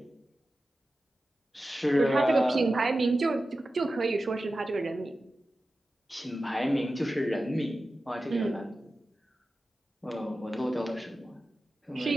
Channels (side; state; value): both; normal; correlation 0.94